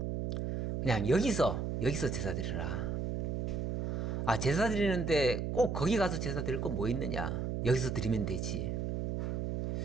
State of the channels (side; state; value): right; noise; hum, 1 dB below the sound